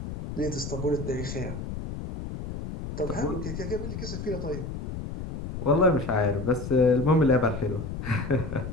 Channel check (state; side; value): noise; left; rumble, 7 dB below the sound